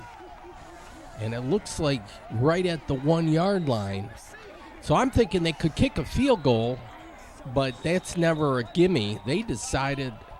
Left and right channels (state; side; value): identical; both; correlation 1.00